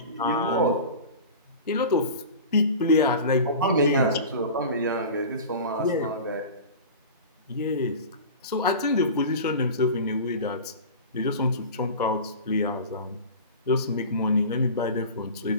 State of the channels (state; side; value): inverted; both; correlation -0.34